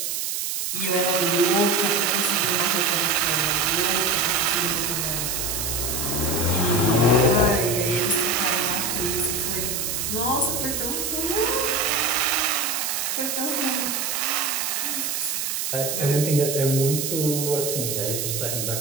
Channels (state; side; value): noise; right; hiss, 2 dB below the sound